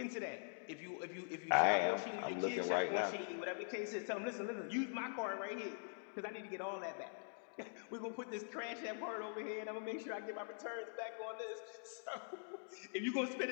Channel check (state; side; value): silent; right; digital silence